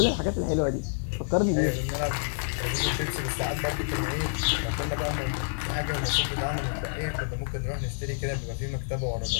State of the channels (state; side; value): silent; right; 59 dB below the other